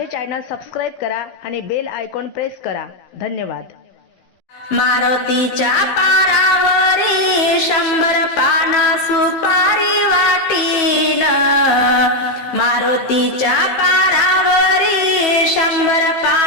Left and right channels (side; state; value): right; late; 15 ms